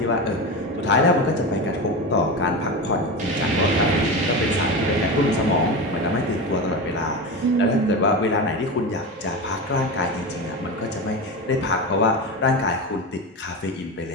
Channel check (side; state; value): both; normal; correlation 0.22